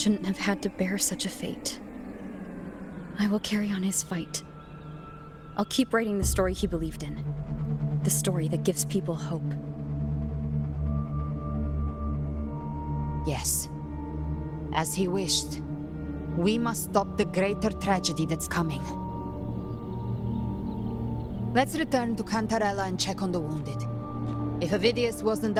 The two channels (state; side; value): identical; both; correlation 1.00